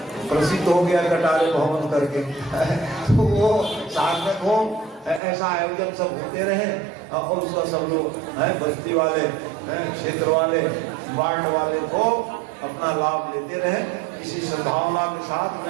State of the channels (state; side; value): drops out; left; at 5.2 s